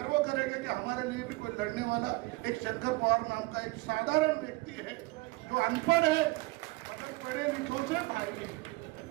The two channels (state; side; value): quieter; left; 22.8 dB